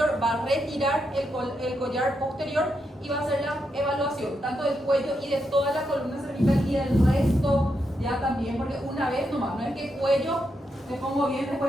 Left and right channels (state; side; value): normal; both; correlation 0.83